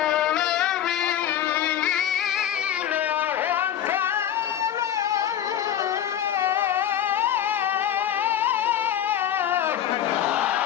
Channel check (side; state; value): right; quieter; 10.6 dB